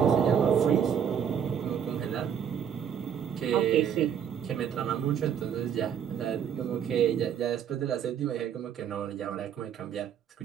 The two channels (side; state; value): left; quieter; 8.4 dB